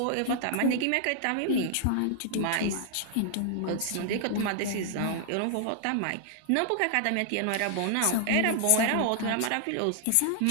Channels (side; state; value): both; different; correlation 0.00